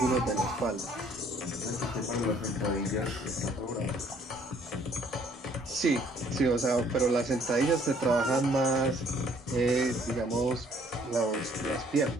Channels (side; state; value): both; normal; correlation 0.61